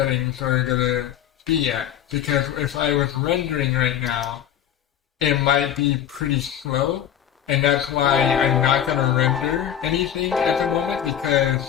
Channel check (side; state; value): right; quieter; 10.1 dB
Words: are gonna be at. Because if I was rendering right now, it might be pretty slow, and that's why I'm not gonna render anything at the moment,